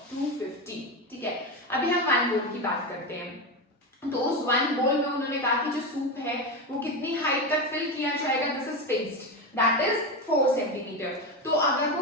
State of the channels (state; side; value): normal; both; correlation 0.17